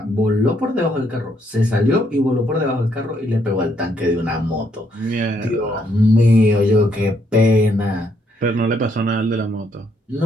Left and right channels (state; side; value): normal; both; correlation 0.72